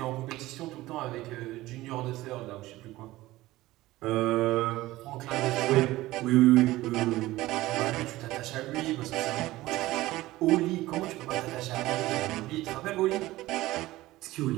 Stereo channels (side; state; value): left; quieter; 17.5 dB